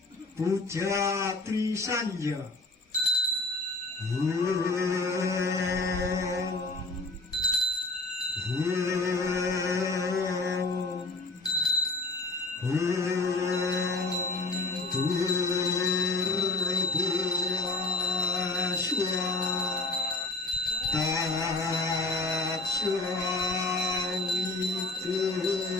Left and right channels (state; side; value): quieter; right; 3.2 dB